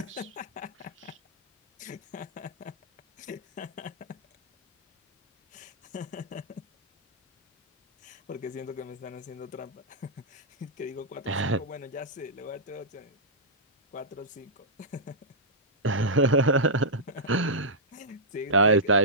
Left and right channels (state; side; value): normal; both; correlation -0.12